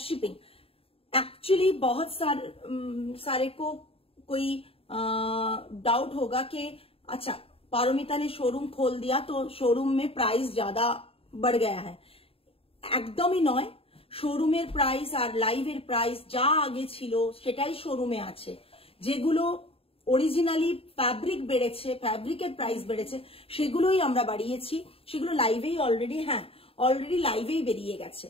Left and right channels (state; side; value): late; right; 0.27 ms